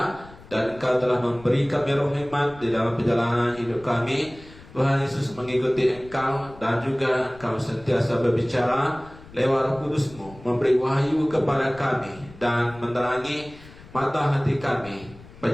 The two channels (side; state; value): left; noise; rumble, 20 dB below the sound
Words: Dan Engkau telah memberi kami roh hikmat di dalam perjalanan hidup kami. Tuhan Yesus mengikuti Engkau, dan juga Engkau sentiasa berbicara lewat Roh Kudus-Mu, memberi wahyu kepada kami dan menerangi mata hati kami,